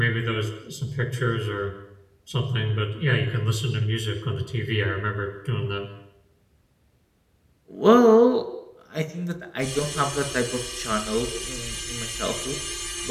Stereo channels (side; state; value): both; identical; correlation 1.00